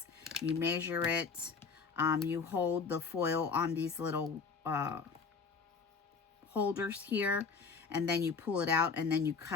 You measure it. You hold the foil on these little holders here, and then you pull it out, and then you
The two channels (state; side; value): quieter; right; 5.1 dB